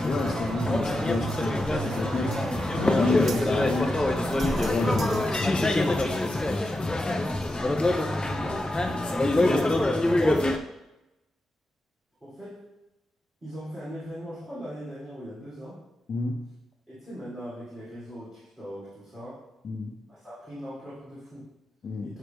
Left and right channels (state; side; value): normal; both; correlation 0.89